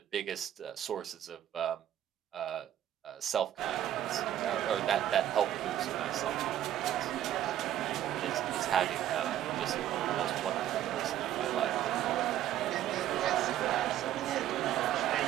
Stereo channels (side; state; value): left; quieter; 11.8 dB